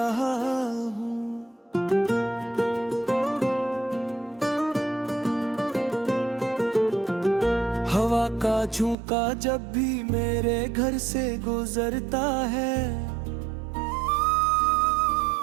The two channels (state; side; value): drops out; left; at 9.0 s